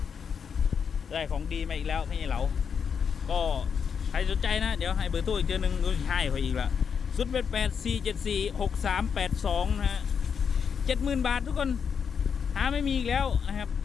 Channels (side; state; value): right; quieter; 6.8 dB